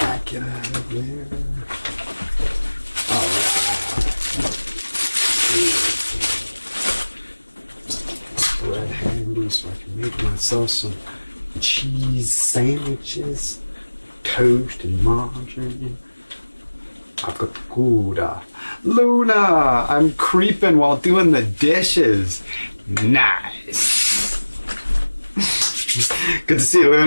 out of there. All right. Bread handy so I can make myself some cheese sandwiches, toast and margarine. I've got Gouda. Luna, I'm creeping while doing the dishes. Nice. Good to see you,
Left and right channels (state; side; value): inverted; both; correlation -1.00